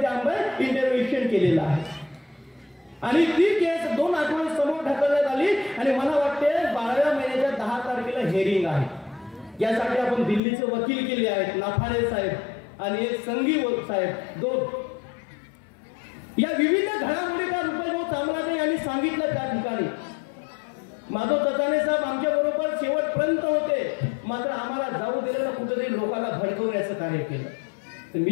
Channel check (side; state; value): right; drops out; at 10.4 s